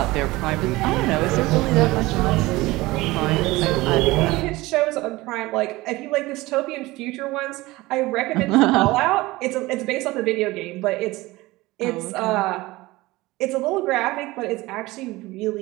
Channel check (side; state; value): left; quieter; 20.0 dB